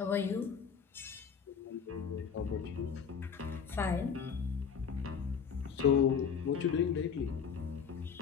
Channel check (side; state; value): right; quieter; 6.8 dB